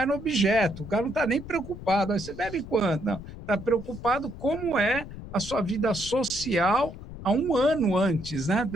no objeto. O cara não está nem preocupado. Aí você bebe quanto? Não. Está preocupado como é a sua vida social há um ano antes, né?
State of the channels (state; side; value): noise; left; rumble, 13 dB below the sound